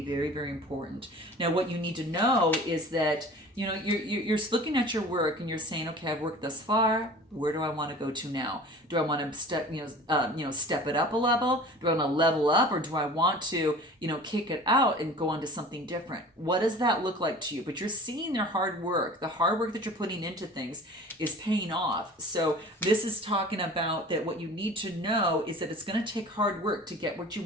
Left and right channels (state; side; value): normal; both; correlation 0.42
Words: very, very important. Now, what you need to know is that you're looking at your work and you're saying, okay, I've worked thus far. Where do I want to go to now? Do I want to step it up a level? Do I want to level up, or do I want to, kick it out and go on to something different? What does that look like to you? But you're seeing their hard work. The hard work that you're putting into things is paying off. So this is talking about that what you need to know is that it's going to take hard work to get what you